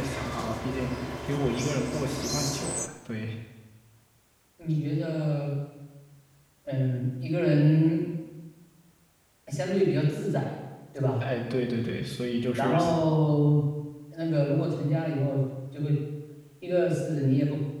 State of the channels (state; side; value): identical; both; correlation 1.00